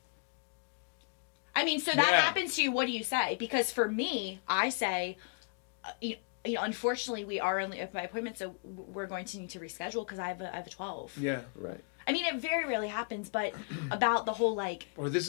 I mean, so that Yeah. happens to you. What do you say? Because for me, I say, unfortunately, we are only open by appointment, so we're going to need to reschedule because I have a 12. Yeah. Right. I mean, it very rarely happens, but about the whole like. Or this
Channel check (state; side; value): quieter; right; 39.1 dB